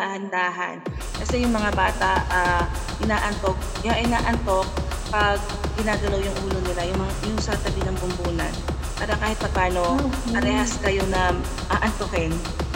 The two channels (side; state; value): both; identical; correlation 1.00